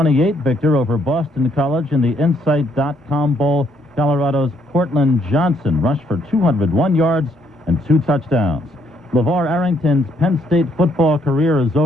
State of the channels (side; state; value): both; normal; correlation 0.70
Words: victor over Boston College in the Insight.com Bowl. Colorado's Cortland Johnson rushed for 201 yards and 2 touchdowns. LeVar Arrington's Penn State football career is